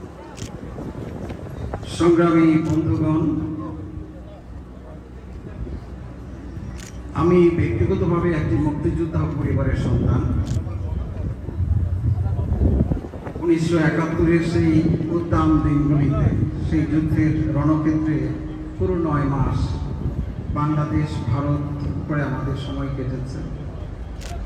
সংগ্রামী বন্ধুগণ, আমি ব্যক্তিগতভাবে একটি মুক্তিযোদ্ধা পরিবারের সন্তান। 1971-এর সেই উদ্দাম দিনগুলিতে, সেই যুদ্ধের রণক্ষেত্রে পুরো 9 মাস বাংলাদেশ ভারত করে আমাদের সময় কেটেছে।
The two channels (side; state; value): both; identical; correlation 1.00